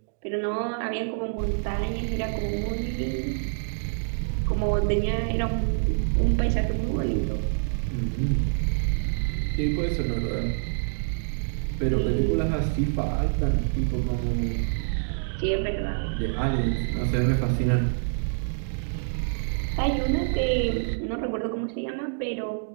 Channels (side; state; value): left; silent; digital silence